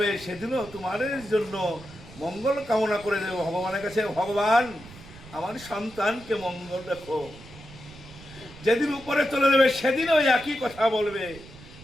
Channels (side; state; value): right; noise; rumble, 19 dB below the sound